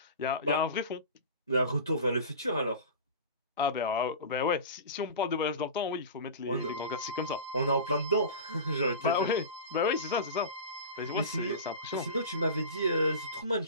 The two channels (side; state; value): both; inverted; correlation -0.31